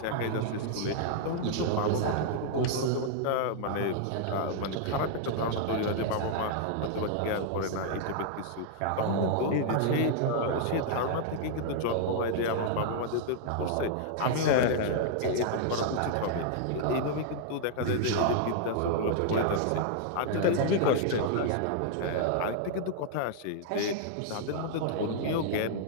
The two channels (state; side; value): different; both; correlation -0.01